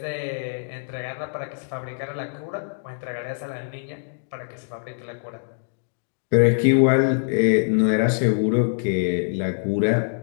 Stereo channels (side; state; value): right; silent; digital silence